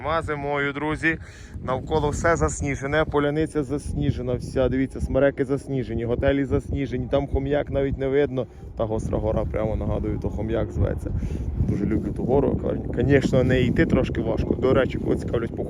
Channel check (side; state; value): both; identical; correlation 1.00